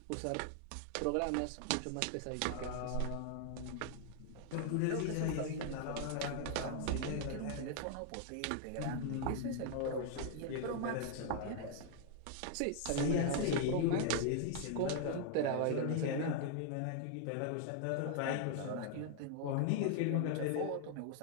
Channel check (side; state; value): both; different; correlation 0.00